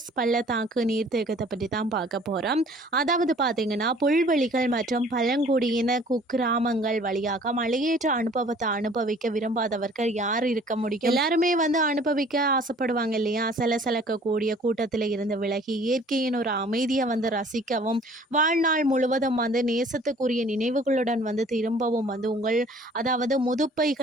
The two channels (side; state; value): both; normal; correlation 0.53